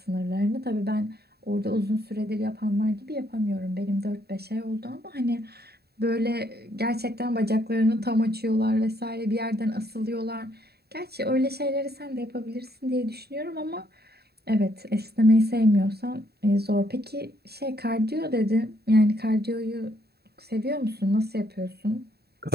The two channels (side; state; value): left; late; 0.47 ms